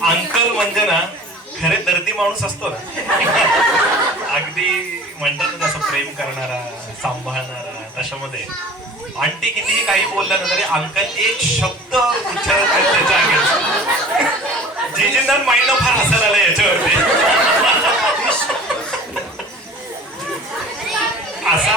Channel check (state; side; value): normal; both; correlation 0.43